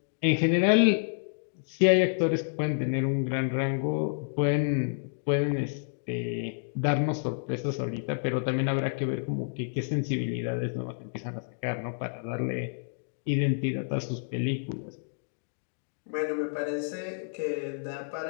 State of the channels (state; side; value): silent; right; digital silence